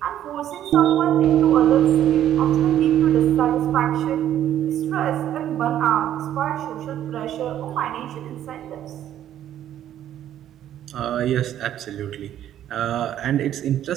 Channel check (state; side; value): quieter; left; 11.3 dB